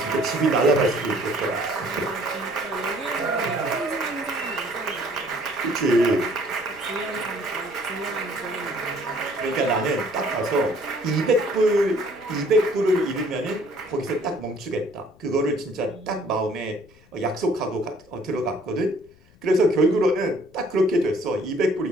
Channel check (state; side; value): noise; left; rumble, 28 dB below the sound